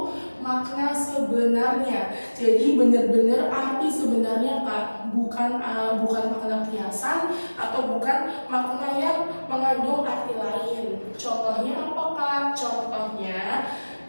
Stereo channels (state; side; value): inverted; both; correlation -1.00